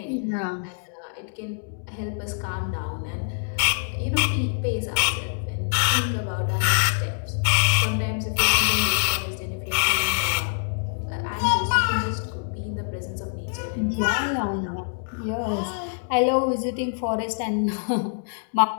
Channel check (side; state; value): right; silent; digital silence